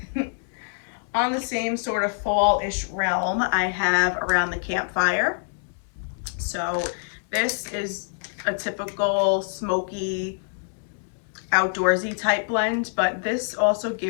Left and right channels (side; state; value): right; silent; digital silence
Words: On the same sort of fall-ish realm, I have Around the Campfire. So this is a typical smoky, outdoorsy type blend, but this also